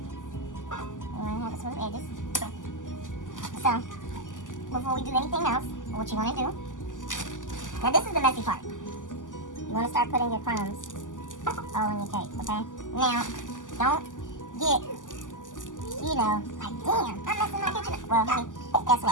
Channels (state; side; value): late; right; 0.87 ms